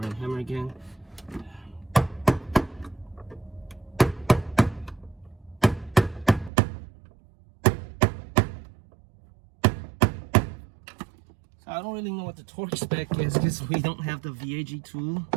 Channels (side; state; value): left; drops out; at 6.5 s